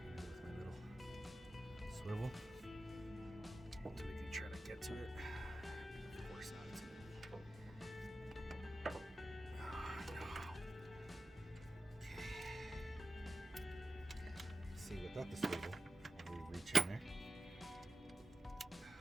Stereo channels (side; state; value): both; normal; correlation 0.91